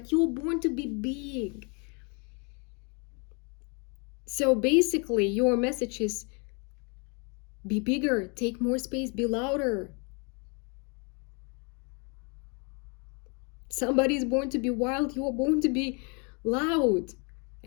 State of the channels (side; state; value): right; quieter; 34.2 dB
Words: you were born to be big. So basically your message is be bigger, take more space, be louder. Somebody is born to be wild, you are born to be loud